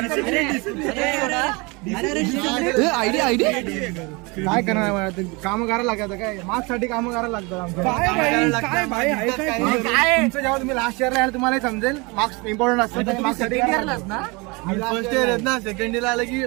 आयडी काय करणार काम करायला लागतं काय मार्क्स साठी काम करायला लागतं तुमचं जेव्हा तुम्ही लास्ट इयरला याल तुम्हाला समजेल मार्क्स इम्पॉर्टंट असतं मार्क्स साठी फर्स्ट इयर आहेत ना सेकंड इयर आलं की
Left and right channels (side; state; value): left; quieter; 27.4 dB